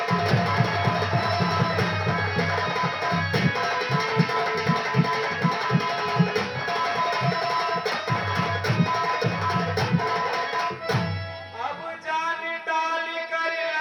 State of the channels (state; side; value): identical; both; correlation 1.00